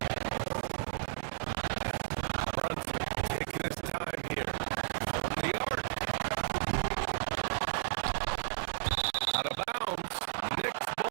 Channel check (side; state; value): left; silent; 55 dB below the other